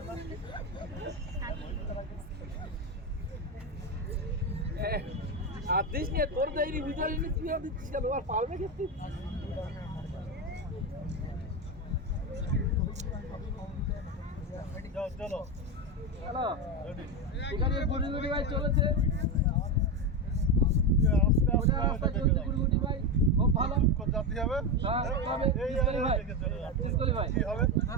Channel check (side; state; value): both; normal; correlation 0.13